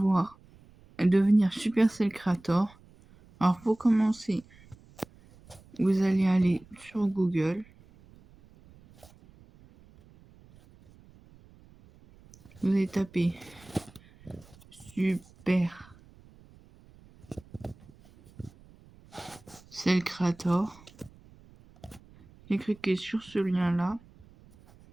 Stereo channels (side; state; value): right; noise; rumble, 25 dB below the sound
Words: devenir Supercell Creator. Alors pour commencer, vous allez aller sur Google. Vous allez taper Supercell Creator. Et cliquez sur ce lien là.